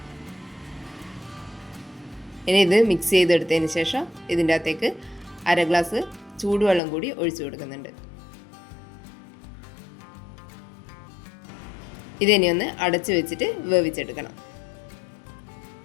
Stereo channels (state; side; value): drops out; right; at 6.8 s